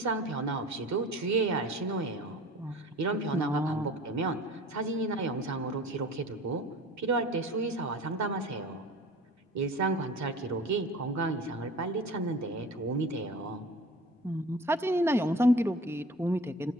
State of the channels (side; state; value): both; normal; correlation 0.41